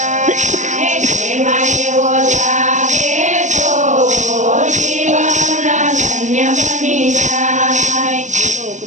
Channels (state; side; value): late; left; 0.35 ms